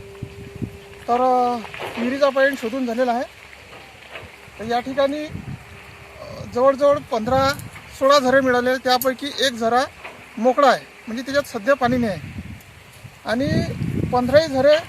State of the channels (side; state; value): both; identical; correlation 1.00